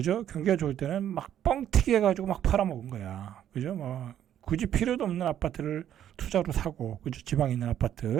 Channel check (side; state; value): left; quieter; 10.6 dB